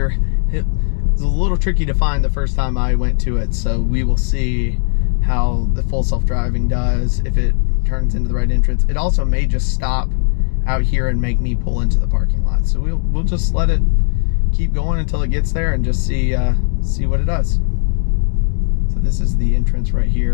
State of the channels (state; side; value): silent; right; 66 dB below the other